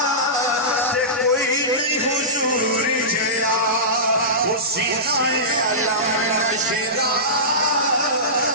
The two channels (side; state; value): both; normal; correlation -0.19